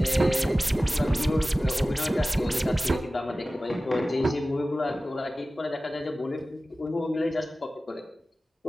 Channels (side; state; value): both; normal; correlation 0.96